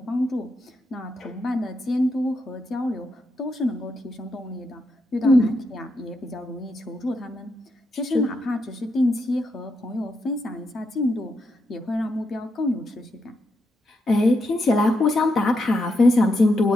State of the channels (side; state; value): both; normal; correlation 0.82